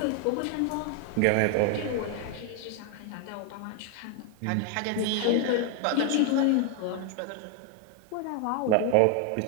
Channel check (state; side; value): different; both; correlation 0.00